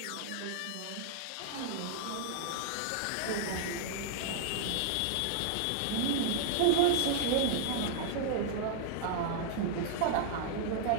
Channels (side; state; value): both; different; correlation -0.01